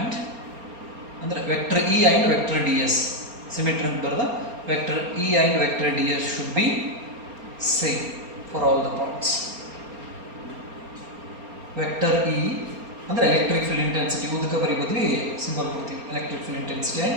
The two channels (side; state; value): left; late; 4.3 ms